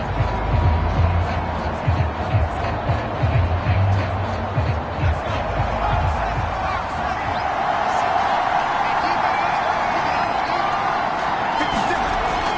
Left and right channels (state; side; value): identical; both; correlation 1.00